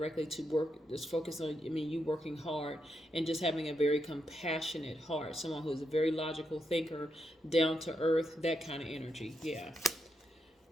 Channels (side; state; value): both; normal; correlation 0.83